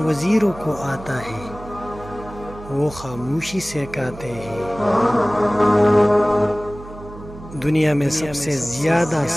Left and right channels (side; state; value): right; noise; hum, 16 dB below the sound